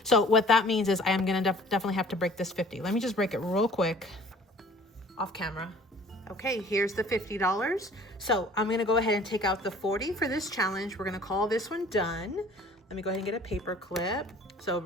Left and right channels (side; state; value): both; normal; correlation 0.50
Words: So what that means is I am going to definitely have to break this 50. Let me just break it real quick off camera. Okay, here's the $50. So I'm going to go ahead and take out the 40 for this challenge. We're going to call this one done. Let me go ahead and get a paper clip. So